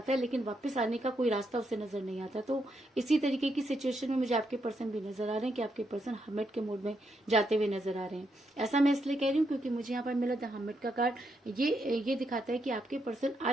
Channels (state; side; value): normal; both; correlation 0.80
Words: है, लेकिन वापस आने का कोई रास्ता उसे नजर नहीं आता। तो इसी तरीके की सिचुएशन में मुझे आपके पर्सन भी नजर आ रहे हैं कि आपके पर्सन हर्मिट के मोड में जाते हुए नजर आ रहे हैं। ऐसा मैं इसलिए कह रही हूँ क्योंकि मुझे यहाँ पर मिला द हर्मिट का कार्ड। ये दिखाता है कि आपके पर्सन